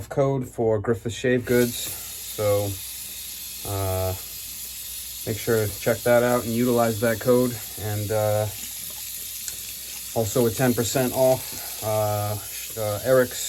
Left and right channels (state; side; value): identical; both; correlation 1.00